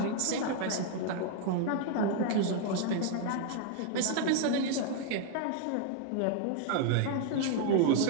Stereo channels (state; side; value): different; both; correlation 0.00